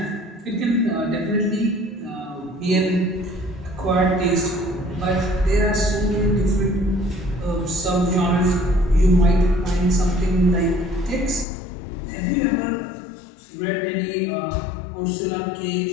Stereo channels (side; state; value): right; drops out; at 11.5 s